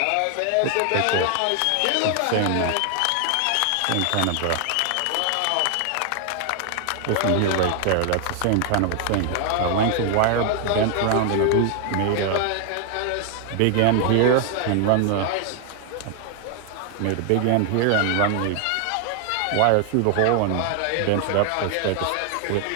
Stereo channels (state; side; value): different; both; correlation 0.00